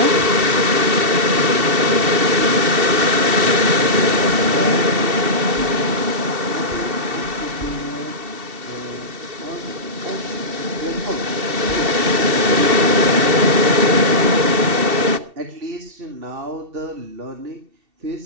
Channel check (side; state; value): left; late; 2.7 ms